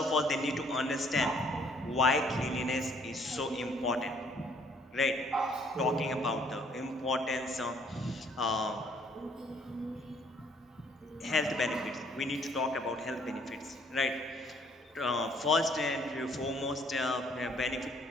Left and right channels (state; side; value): normal; both; correlation 0.62